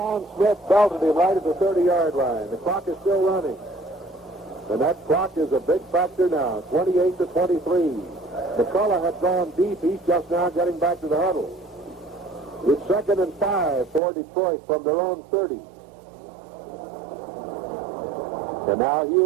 Smith belted him right at the 30-yard line. The clock is still running. And that clock is a big factor now, 28-23. McCullough had gone deep. He's just now getting back to the huddle. It's 2nd and 5 for Detroit from their own 30. And now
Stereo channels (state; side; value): drops out; left; at 14.0 s